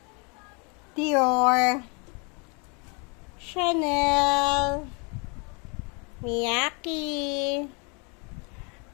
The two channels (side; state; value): right; quieter; 33.6 dB